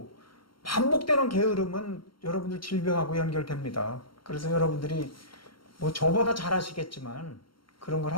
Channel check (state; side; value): late; right; 0.73 ms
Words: 반복되는 게으름은 여러분들 질병하고 연결됩니다. 그래서 여러분들이 뭐 저보다 잘 아시겠지만 그런 걸